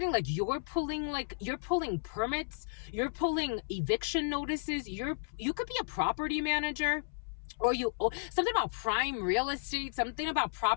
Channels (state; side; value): silent; right; 55 dB below the other